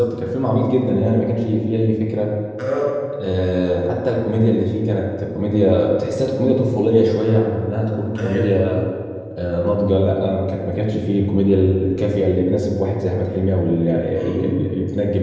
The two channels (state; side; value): identical; both; correlation 1.00